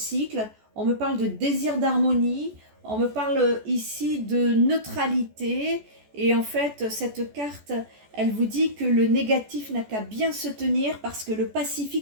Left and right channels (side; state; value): left; late; 14 ms